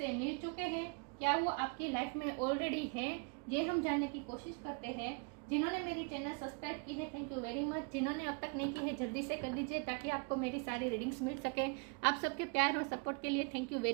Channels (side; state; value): left; quieter; 34.0 dB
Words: मिल चुके हैं, क्या वो आपकी लाइफ में ऑलरेडी है। ये हम जानने की कोशिश करते हैं। जिन्होंने मेरी चैनल सब्सक्राइब की है, थैंक यू वेरी मच। जिन्होंने अब तक नहीं की है, जल्दी से कर दीजिए ताकि आपको मेरी सारी रीडिंग्स मिल सके। आप सबके प्यार और सपोर्ट के लिए थैंक यू